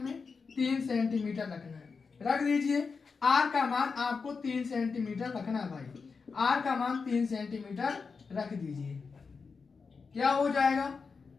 3 सेंटीमीटर रखना है, रख दीजिए। r का मान आपको 3 सेंटीमीटर रखना है भाई, r का मान 3 सेंटीमीटर रख दीजिए। क्या हो जाएगा?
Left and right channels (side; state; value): right; quieter; 5.0 dB